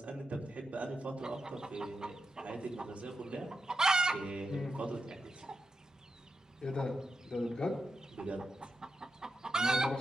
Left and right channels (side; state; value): both; normal; correlation 0.87